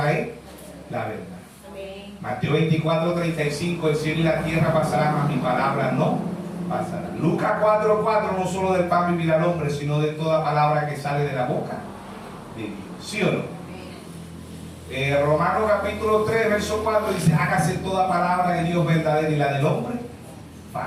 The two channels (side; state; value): both; identical; correlation 1.00